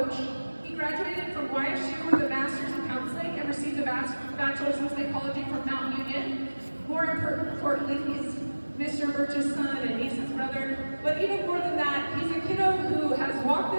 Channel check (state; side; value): inverted; both; correlation -1.00